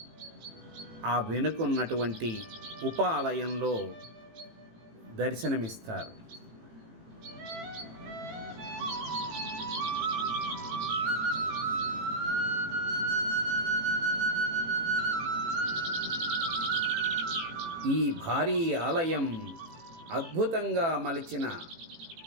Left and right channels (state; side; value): late; left; 18 ms